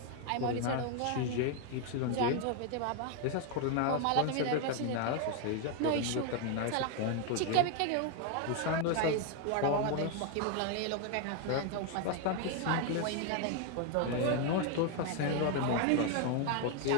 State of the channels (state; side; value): different; both; correlation 0.01